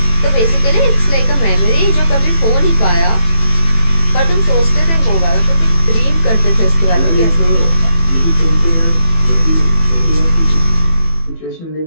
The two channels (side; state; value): right; late; 18 ms